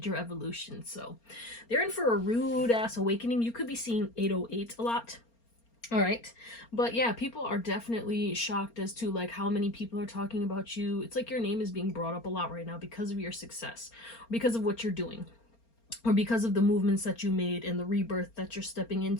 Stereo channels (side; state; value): right; late; 4.3 ms